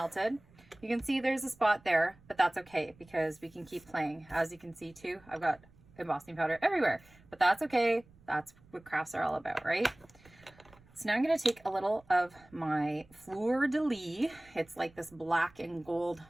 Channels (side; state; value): right; noise; rumble, 27 dB below the sound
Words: you can see there's a spot there, but that's okay because we can keep playing. As you can see too, I've got embossing powder everywhere, but that's okay. That's what crafts are all about, right? So now I'm going to take a little of my fleur de lis. It's like this black and gold